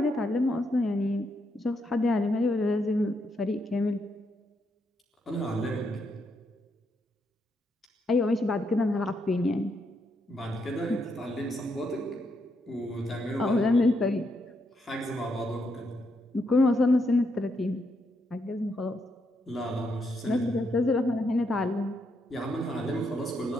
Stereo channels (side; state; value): both; normal; correlation 0.79